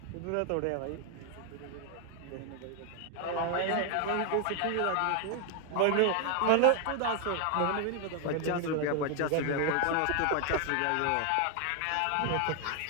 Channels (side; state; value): both; different; correlation 0.01